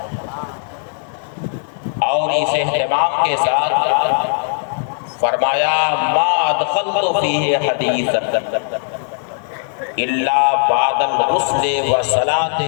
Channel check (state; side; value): silent; right; digital silence